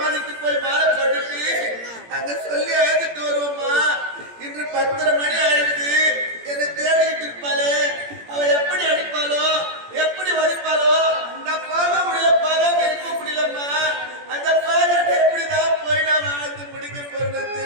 போய் மாலை போட்டுட்டு அங்க சொல்லி அழைத்துட்டு வருவோம்மா. இன்று 10:30 மணி ஆயிடுது. என்னை தேடிக்கிட்டு இருப்பாளே, அவ எப்படி அடிப்பாளோ எப்படி வலிப்பாளோ நான் போக முடியல, போகாம இருக்க முடியலம்மா. அந்த பாராட்டை எப்படிதான் போய் நான் வாழ்ந்து முடிக்க போறேன்னு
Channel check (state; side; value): late; left; 17 ms